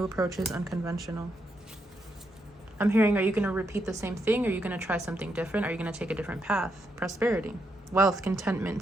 approaches, unconventional. I'm hearing, are you going to repeat the same thing? Are you going to try something different? Are you going to take a different path? Prosperity, wealth, contentment,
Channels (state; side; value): normal; both; correlation 0.80